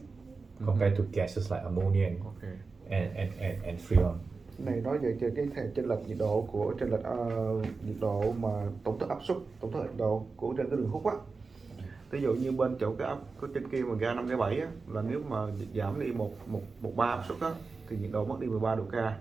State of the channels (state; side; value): quieter; left; 4.3 dB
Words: compared to gases like ammonia and freon. Này nói về cái chênh lệch nhiệt độ của nhiệt độ mà tổng thức áp suất, tổng thức nhiệt độ của trên cái đường hút á. Ví dụ như bên chỗ cái trên kia mà ga 5 cái 7 á, là nếu mà giảm đi một bar áp suất á thì nhiệt độ mất đi 13 độ K.